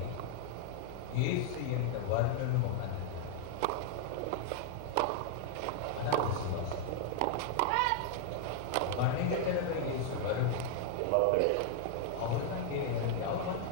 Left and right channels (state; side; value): different; both; correlation 0.00